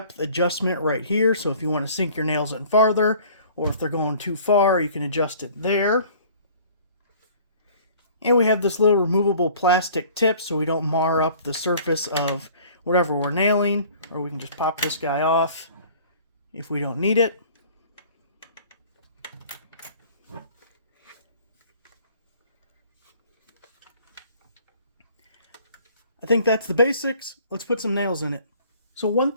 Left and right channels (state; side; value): inverted; both; correlation -0.51